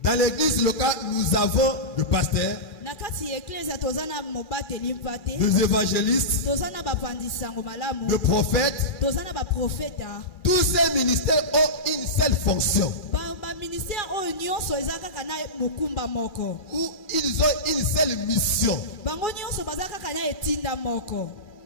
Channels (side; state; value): right; late; 2.4 ms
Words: Dans l'église locale, nous avons le pasteur, des évangélistes, des prophètes. Tous ces ministères ont une seule fonction. Ou ils ont une seule mission.